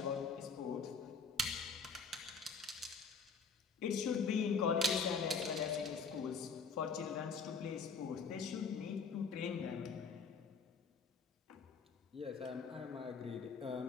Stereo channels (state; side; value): quieter; right; 5.0 dB